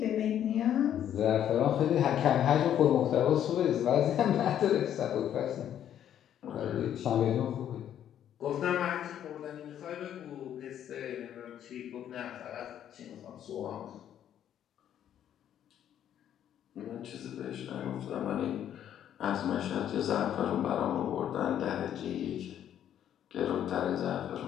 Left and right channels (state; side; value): quieter; right; 10.3 dB